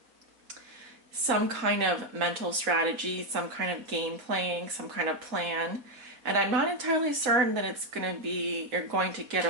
Some kind of mental strategy, some kind of game playing, some kind of plan. And I'm not entirely certain that it's going to be, you're going to get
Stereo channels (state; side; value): late; left; 4.2 ms